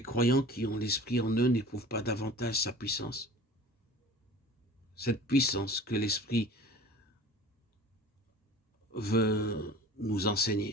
qui ont l'Esprit en eux n'éprouvent pas davantage sa puissance? Cette puissance que l'Esprit veut nous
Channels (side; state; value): both; normal; correlation 0.42